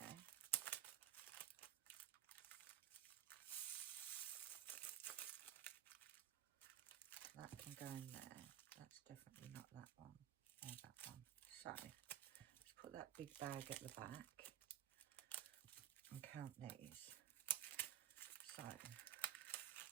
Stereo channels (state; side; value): quieter; left; 10.5 dB